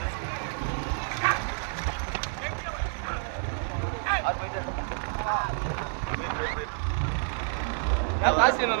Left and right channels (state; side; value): silent; left; 59 dB below the other